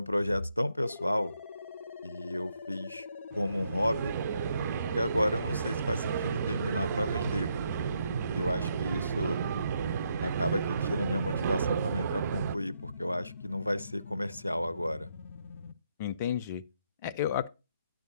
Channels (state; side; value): inverted; both; correlation -0.76